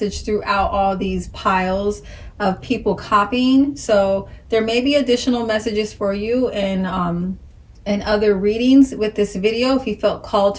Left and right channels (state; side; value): identical; both; correlation 1.00